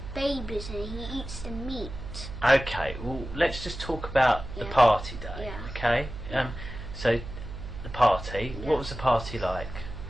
babies and he eats the meat. Okay, well let's just talk about the party day. Yeah. Okay. So the party. What was the party like?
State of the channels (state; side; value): noise; right; hum, 10 dB below the sound